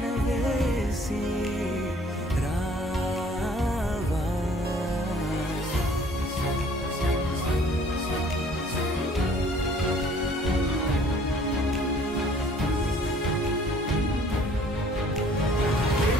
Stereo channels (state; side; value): normal; both; correlation 0.56